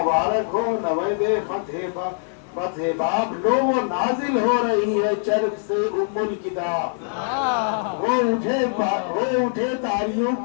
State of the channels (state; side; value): silent; right; digital silence